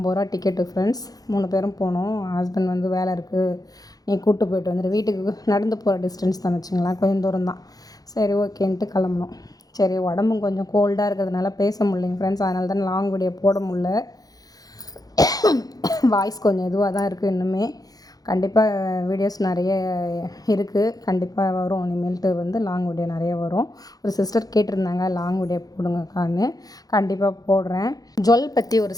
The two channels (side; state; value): right; late; 0.18 ms